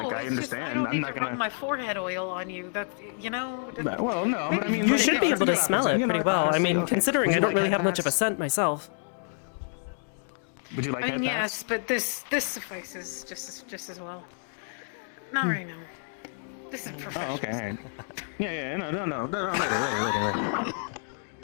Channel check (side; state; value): right; silent; 59 dB below the other